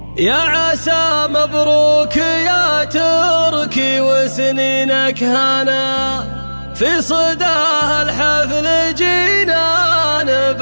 يا عسى مبروك يا تركي وسنينك هنا، في صداه الحفل جينا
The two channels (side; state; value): both; inverted; correlation -1.00